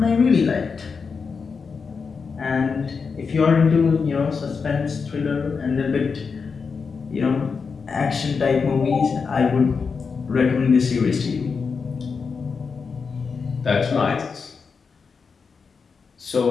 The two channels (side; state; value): right; quieter; 5.3 dB